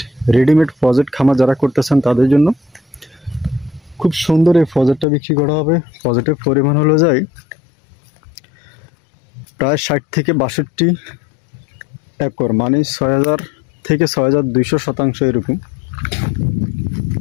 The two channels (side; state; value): right; drops out; at 5.1 s